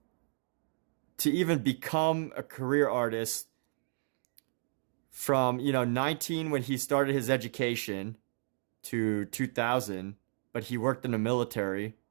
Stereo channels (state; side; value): silent; left; digital silence